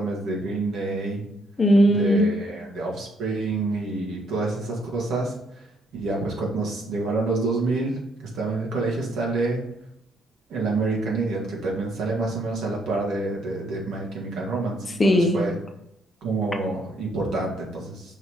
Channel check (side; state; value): both; normal; correlation 0.70